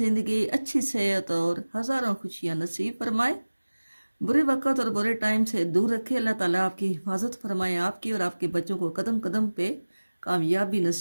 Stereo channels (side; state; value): both; inverted; correlation -1.00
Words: अच्छी सेहत और हज़ारों खुशियाँ नसीब फरमाए। बुरे वक़्त और बुरे टाइम से दूर रखे। अल्लाह ताला आपकी हिफाजत फरमाए, आपकी और आपके बच्चों को कदम कदम पे कामयाबी